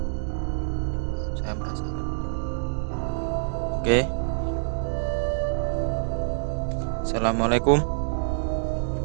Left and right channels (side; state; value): left; silent; digital silence